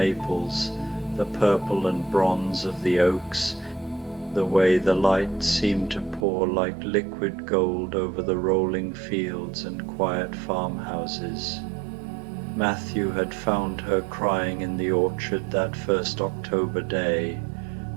the purple and bronze of the oaks, the way the light seemed to pour like liquid gold over the rolling fields and quiet farmhouses. Matthew had found her crying in the orchard that first October day,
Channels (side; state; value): left; drops out; at 6.2 s